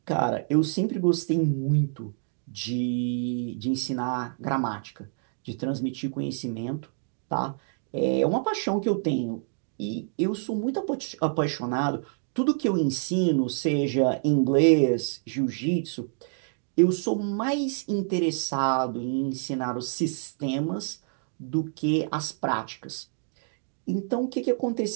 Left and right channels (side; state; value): left; silent; 60 dB below the other